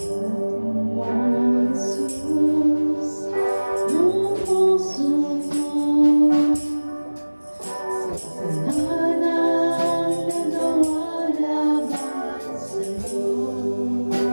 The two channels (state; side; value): inverted; both; correlation -1.00